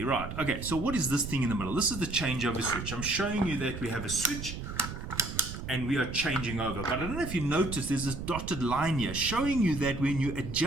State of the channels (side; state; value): right; noise; rumble, 8 dB below the sound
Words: Right. Okay. So what is this thing in the middle? This is the changeover switch. I'm showing you that we have a switch and we are changing over. But I don't know if you noticed, there's this dotted line here showing you that when you